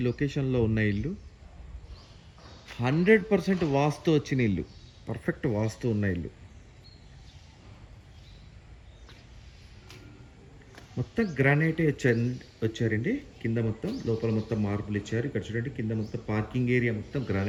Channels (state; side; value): identical; both; correlation 1.00